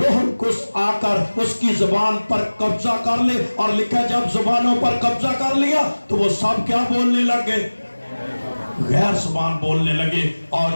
القدس آ کر اس کی زبان پر قبضہ کر لے، اور لکھا جب زبانوں پر قبضہ کر لیا تو وہ سب کیا بولنے لگے؟ غیر زبان بولنے لگے۔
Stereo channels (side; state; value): both; inverted; correlation -1.00